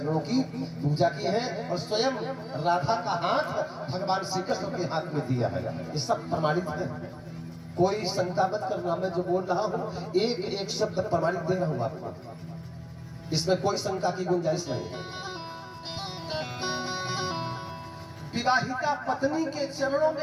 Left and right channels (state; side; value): identical; both; correlation 1.00